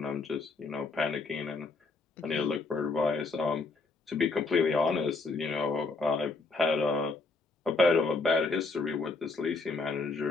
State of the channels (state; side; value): quieter; right; 3.7 dB